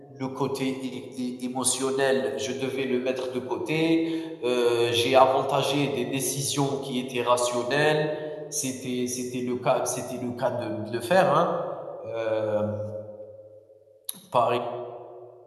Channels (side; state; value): both; identical; correlation 1.00